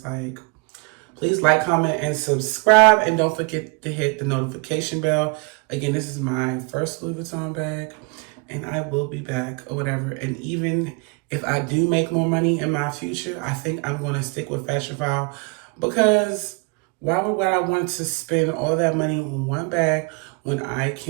Like, please like, comment, and subscribe. And don't forget to hit the notification bell. Again, this is my first Louis Vuitton bag. And I will be back or whatever. And even if I do make more money in my future, I think I'm going to stick with Fashion File. Because why would I want to spend all that money on one bag when I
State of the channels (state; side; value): quieter; left; 30.8 dB